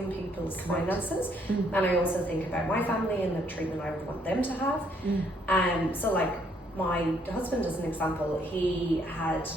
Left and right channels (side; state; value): both; normal; correlation 0.68